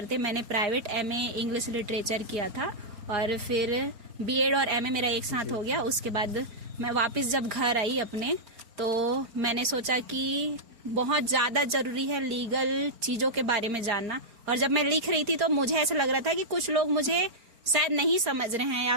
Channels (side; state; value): left; late; 4.4 ms